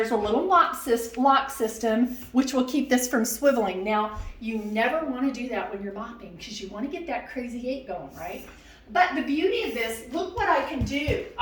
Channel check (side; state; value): both; identical; correlation 1.00